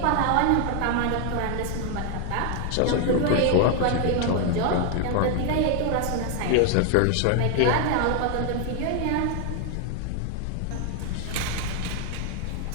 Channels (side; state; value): both; different; correlation 0.01